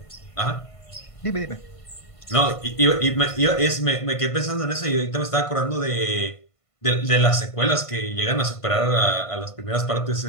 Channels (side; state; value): right; late; 1.5 ms